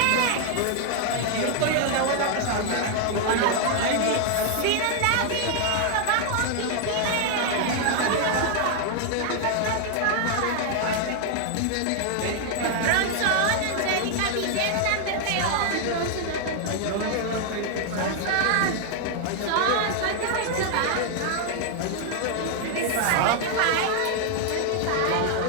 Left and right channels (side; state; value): both; different; correlation 0.00